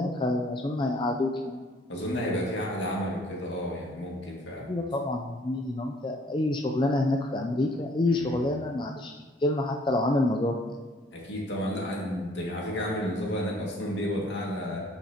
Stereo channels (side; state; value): both; normal; correlation 0.59